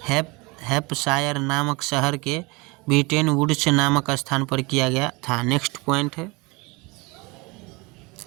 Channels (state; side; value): quieter; left; 25.9 dB